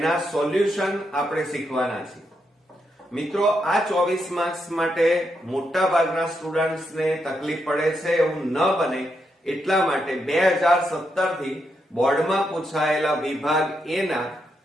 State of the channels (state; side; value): normal; both; correlation 0.81